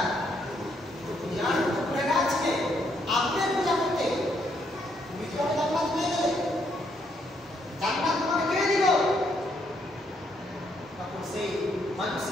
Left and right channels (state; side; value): normal; both; correlation 0.73